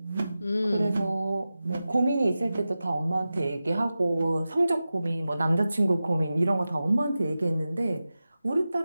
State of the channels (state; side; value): inverted; both; correlation -0.94